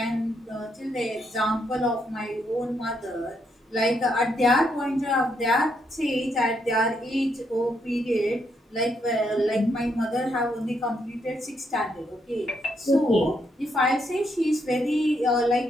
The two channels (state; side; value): normal; both; correlation 0.77